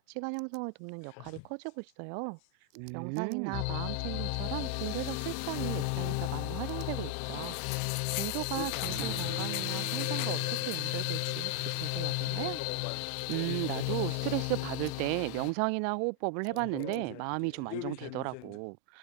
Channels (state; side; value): different; both; correlation 0.00